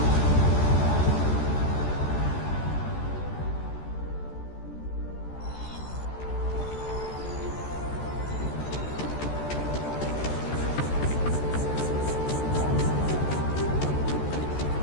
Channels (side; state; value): right; late; 14 ms